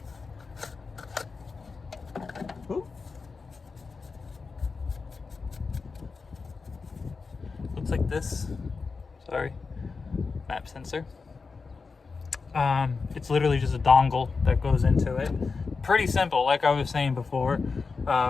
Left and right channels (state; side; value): quieter; right; 4.6 dB